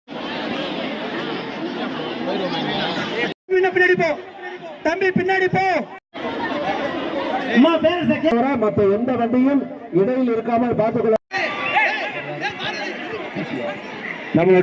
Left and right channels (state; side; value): identical; both; correlation 1.00